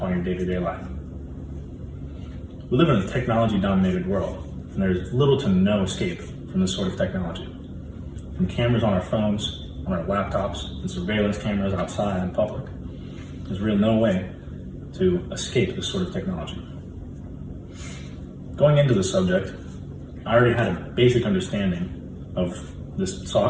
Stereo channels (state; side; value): identical; both; correlation 1.00